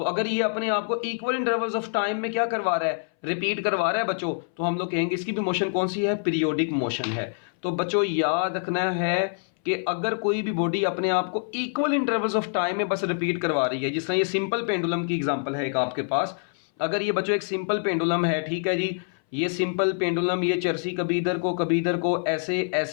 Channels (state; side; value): silent; right; 61 dB below the other